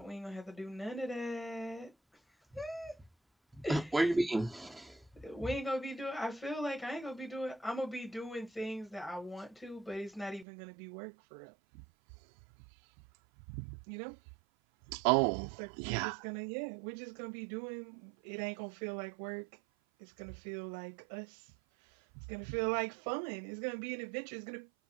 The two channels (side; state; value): left; drops out; at 10.5 s